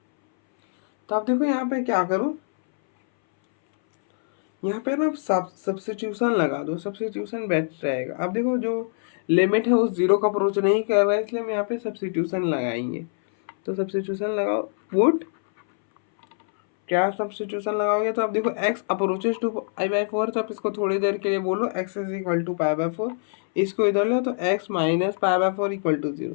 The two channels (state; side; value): silent; right; 61 dB below the other